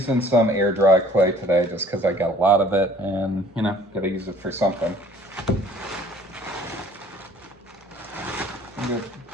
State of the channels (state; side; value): normal; both; correlation 0.54